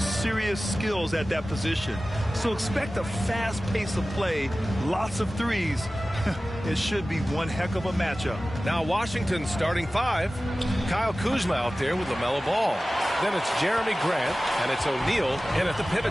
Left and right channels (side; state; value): both; normal; correlation 0.96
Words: skills at that position. So expect a fast pace of play, lots of threes. It should be one heck of a matchup. Now Washington starting five. Kyle Kuzma out there with LaMelo Ball. Then it's Jeremy Grant, and it's O'Neal in at the